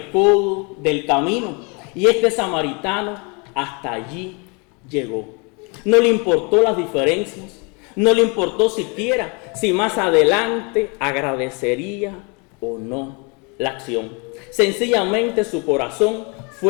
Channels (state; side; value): quieter; right; 31.9 dB